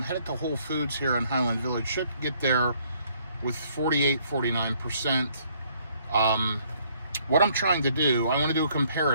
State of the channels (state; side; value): inverted; both; correlation -0.65